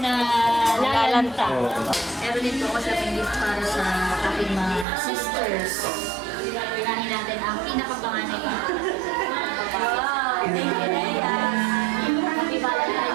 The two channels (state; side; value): drops out; left; at 4.9 s